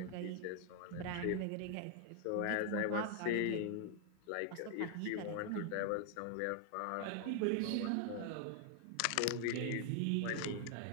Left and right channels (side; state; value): both; different; correlation 0.00